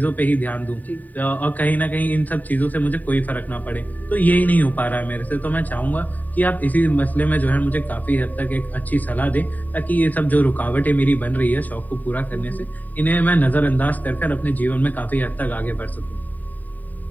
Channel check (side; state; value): right; late; 0.083 ms